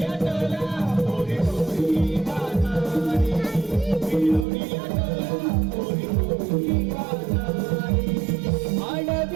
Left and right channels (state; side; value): drops out; left; at 4.5 s